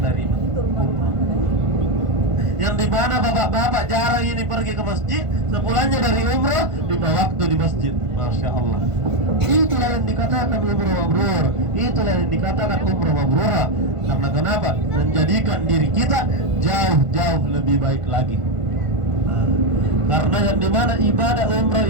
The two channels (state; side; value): late; left; 1.5 ms